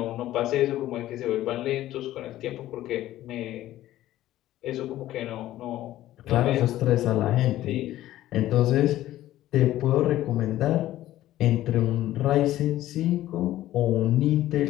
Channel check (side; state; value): right; quieter; 14.3 dB